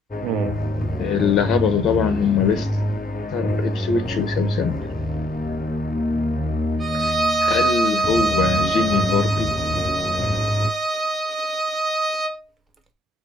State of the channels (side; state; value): both; normal; correlation 0.68